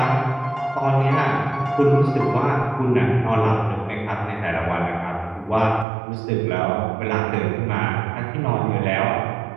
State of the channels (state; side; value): drops out; left; at 5.9 s